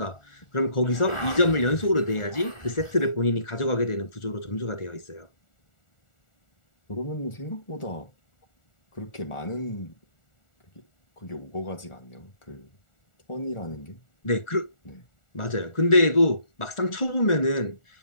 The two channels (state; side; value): late; right; 1.4 ms